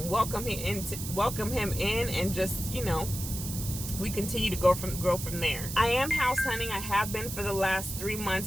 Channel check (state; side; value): noise; right; hiss, 7 dB below the sound